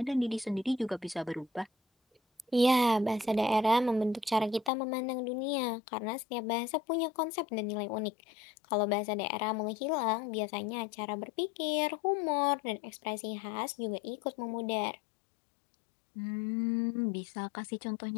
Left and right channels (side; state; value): right; drops out; at 4.7 s